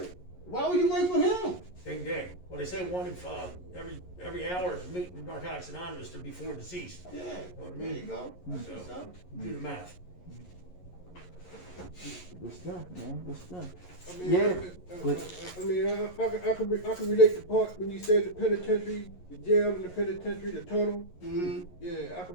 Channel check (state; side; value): late; right; 11 ms